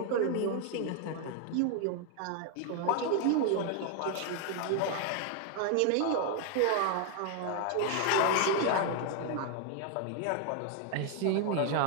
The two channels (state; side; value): different; both; correlation 0.01